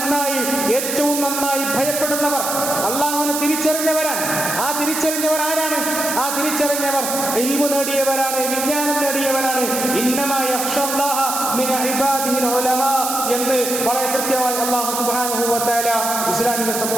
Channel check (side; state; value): right; noise; hiss, 3 dB below the sound